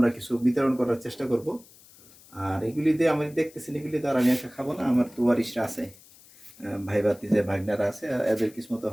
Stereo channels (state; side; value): noise; left; hiss, 24 dB below the sound